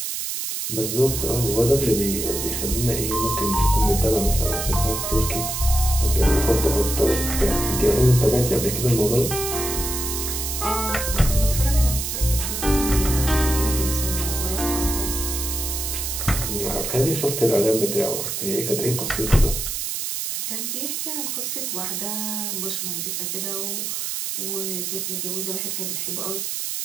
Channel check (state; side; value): noise; right; hiss, 3 dB below the sound